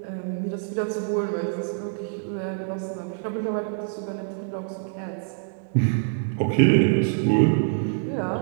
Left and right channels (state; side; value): silent; left; digital silence